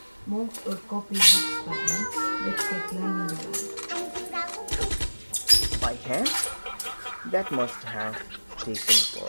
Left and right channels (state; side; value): inverted; both; correlation -1.00